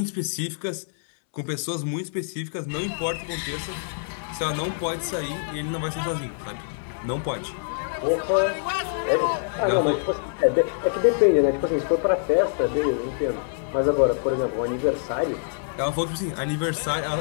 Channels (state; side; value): silent; right; 62 dB below the other